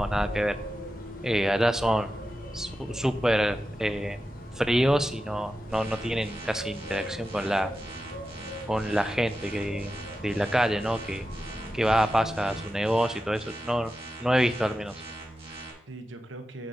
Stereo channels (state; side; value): normal; both; correlation 0.91